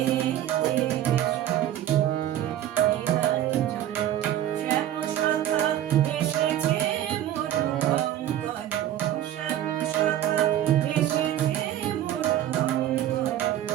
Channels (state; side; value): quieter; left; 12.0 dB